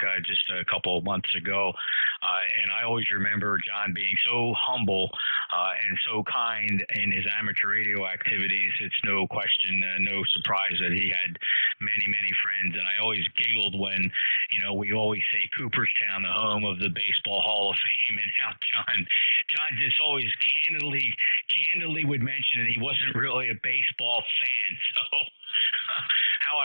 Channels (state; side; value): inverted; both; correlation -1.00